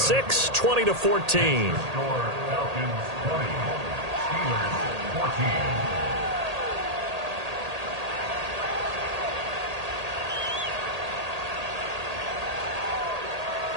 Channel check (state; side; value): late; left; 1.8 ms